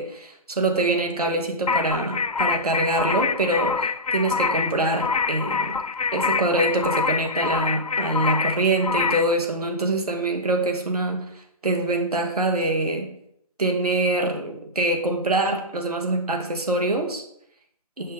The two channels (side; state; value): both; normal; correlation -0.11